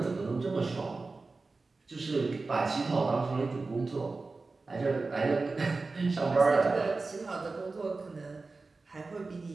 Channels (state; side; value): quieter; left; 3.8 dB